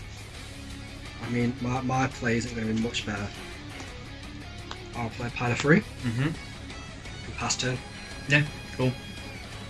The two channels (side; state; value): both; identical; correlation 1.00